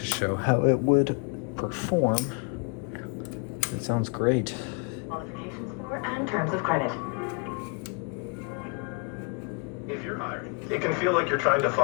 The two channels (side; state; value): right; quieter; 34.8 dB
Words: show how it would perform. It sounds great. Qualifications for and terms of credit. If you're hiring, it can feel like you're trying to